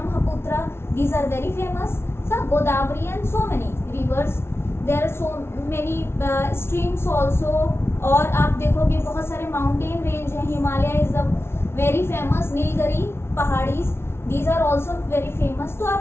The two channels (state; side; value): late; right; 0.12 ms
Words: these are very famous. सब Godavari and so many rivers. There are so many streams also. और आप देखोगे बहुत सारे माउंटेन रेंज हैं. Himalaya is the very famous. Nilgiri पहाड़ीज, these are also very famous. तो